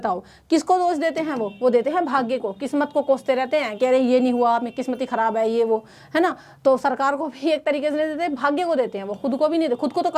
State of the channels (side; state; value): both; identical; correlation 1.00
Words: किसको दोष देते हैं, वो देते हैं भाग्य को, किस्मत को कोसते रहते हैं, कह रहे ये नहीं हुआ, मेरी किस्मत ही खराब है, ये वो है ना। तो सरकार को भी एक तरीके से देते हैं, भाग्य को देते हैं, वो खुद को भी नहीं देते, खुद को तो